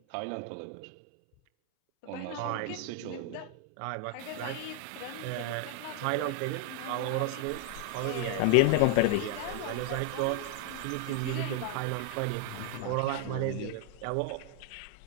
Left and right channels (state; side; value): different; both; correlation 0.00